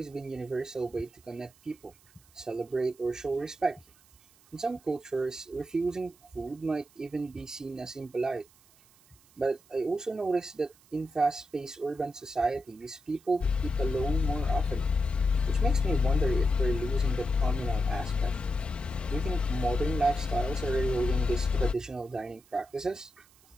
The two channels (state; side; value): noise; right; hiss, 28 dB below the sound